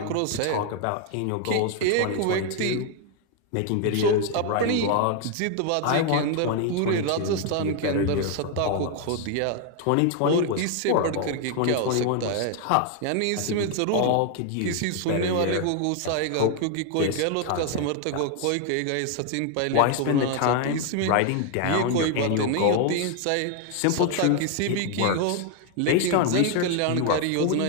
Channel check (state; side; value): different; both; correlation 0.01